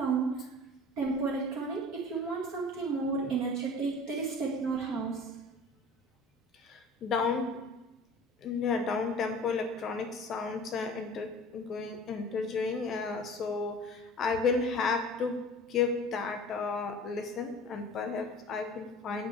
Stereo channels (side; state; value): both; normal; correlation 0.42